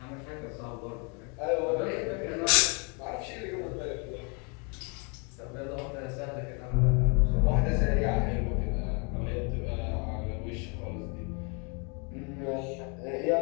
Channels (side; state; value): right; quieter; 34.8 dB